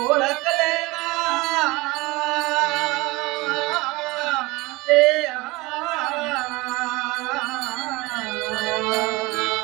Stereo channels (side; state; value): left; quieter; 22.8 dB